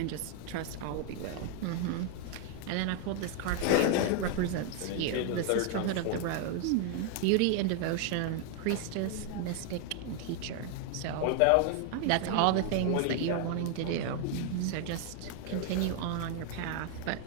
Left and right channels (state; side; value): different; both; correlation 0.00